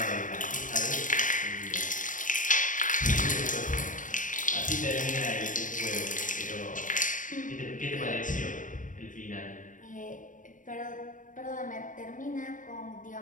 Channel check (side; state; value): right; late; 0.38 ms